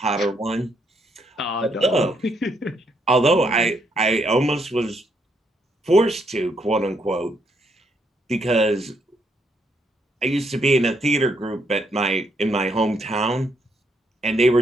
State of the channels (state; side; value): normal; both; correlation 0.74